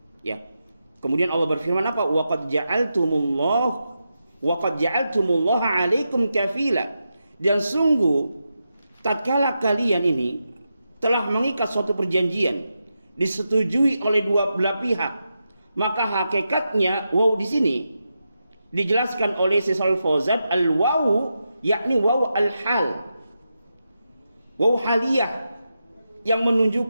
Ya. Kemudian Allah berfirman apa? Wa qad ja'altumullaha 'alaikum kafila. Dan sungguh tatkala kalian ini telah mengikat suatu perjanjian disetujui oleh dua belah pihak, maka hakikatnya waw di sini dijelaskan oleh Syaikh Fauzan al-waw yakni waw al-hal, waw haliyah, yang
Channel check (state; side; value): inverted; both; correlation -0.88